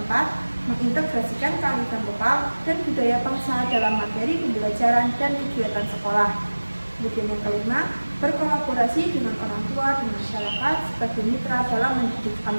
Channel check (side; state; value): both; inverted; correlation -1.00